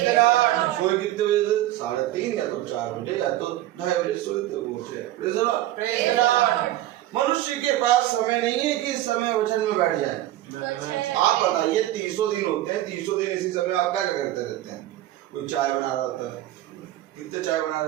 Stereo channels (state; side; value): quieter; left; 14.6 dB